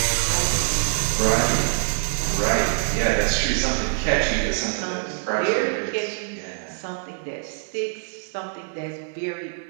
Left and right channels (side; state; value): left; silent; 62 dB below the other